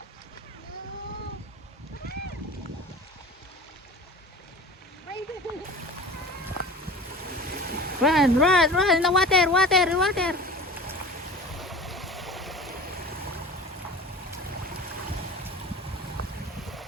Run, run, run in the water, water, water.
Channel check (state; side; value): normal; both; correlation 0.38